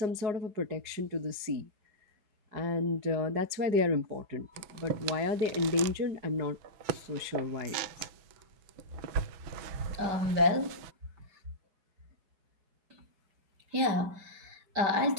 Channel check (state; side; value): late; left; 6.0 ms